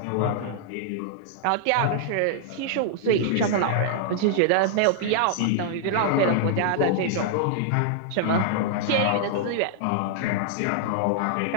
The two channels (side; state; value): both; different; correlation -0.01